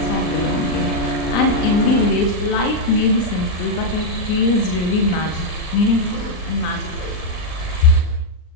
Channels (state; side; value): late; right; 39 ms